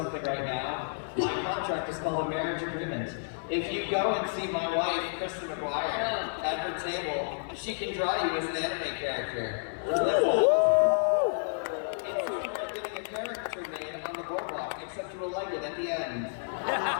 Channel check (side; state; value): right; silent; 57 dB below the other